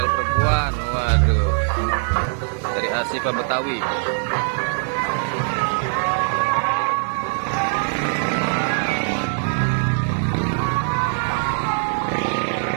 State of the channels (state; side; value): silent; left; digital silence